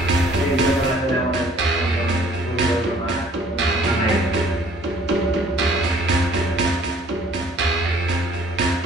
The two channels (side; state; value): both; normal; correlation 0.57